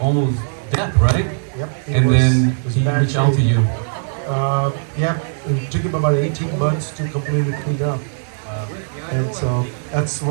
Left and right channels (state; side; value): silent; left; 60 dB below the other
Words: death, right? Yep. And then he reached out to you. Yep. It took him about 18 months to completely clean up. And so that's